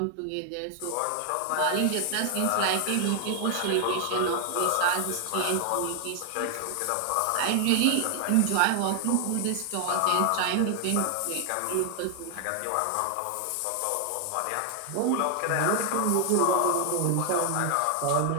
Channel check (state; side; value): different; both; correlation 0.00